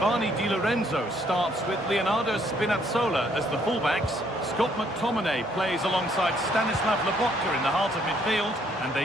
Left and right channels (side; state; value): both; normal; correlation 0.67